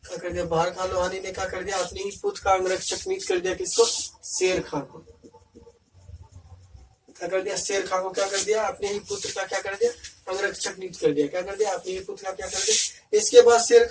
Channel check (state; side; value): identical; both; correlation 1.00